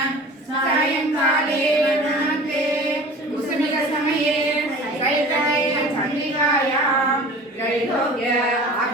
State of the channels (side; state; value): both; normal; correlation 0.41